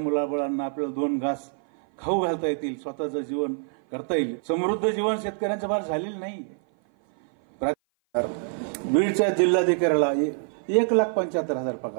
आपल्याला 2 घास खाऊ घालता येतील, स्वतःचं जीवन करता येईल. समृद्ध जीवन शेतकऱ्यांचं फार झालेलं नाही. बीडच्या जिल्हाधिकाऱ्याला 1,75,000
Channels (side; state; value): left; silent; 56 dB below the other